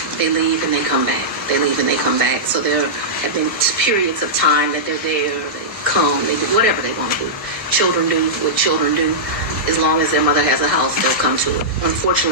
they leave and they come back. They leave and they come back. So there have been periods of time that they're there, they come, they do whatever they want to do. Children do what children do. As long as their mother has a house, they'll come to it.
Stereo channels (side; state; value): both; normal; correlation -0.13